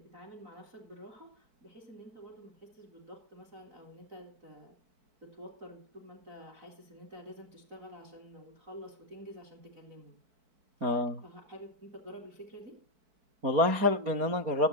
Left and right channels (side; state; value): left; late; 4.6 ms